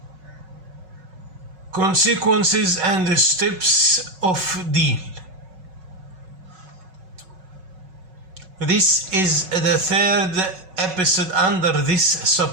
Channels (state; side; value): late; left; 5.4 ms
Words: Consequences and steps of deal. This is the third episode under this